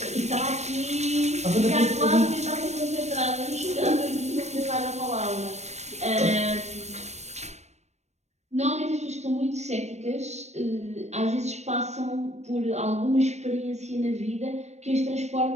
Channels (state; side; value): late; left; 0.32 ms